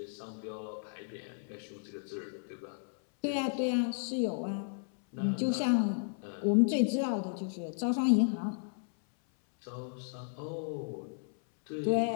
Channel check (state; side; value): silent; right; 55 dB below the other